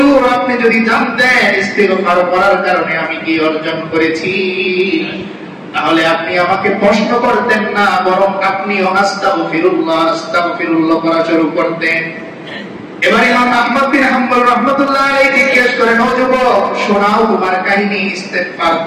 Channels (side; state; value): both; identical; correlation 1.00